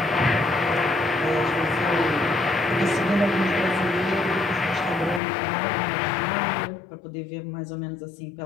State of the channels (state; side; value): drops out; right; at 5.2 s